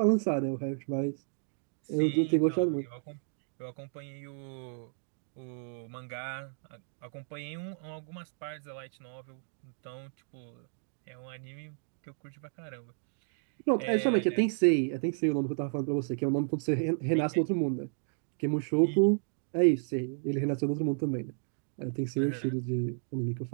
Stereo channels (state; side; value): silent; left; digital silence